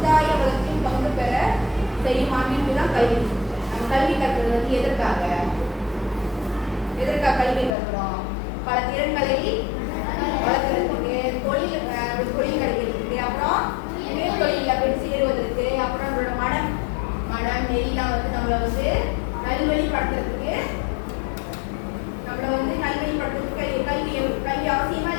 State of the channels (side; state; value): right; drops out; at 7.7 s